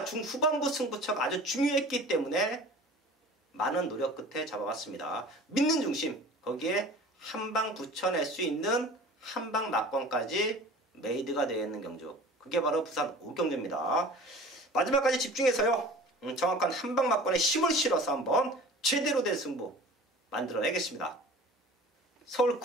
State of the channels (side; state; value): both; normal; correlation 0.42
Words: 중후반부 승부처가 아주 중요했기 때문에 많은 노력 끝에 잡아왔습니다. 믿는 중심, 거기에 한 방 붙여낼 수 있는 한방 막권까지 메이드가 되어 있는 경주, 그게 바로 부산 5경주입니다. 마지막까지 집중해서요, 정확한 한방 막권에 힘을 실어서 한번 제대로 된 승부 만들어내겠습니다. 서울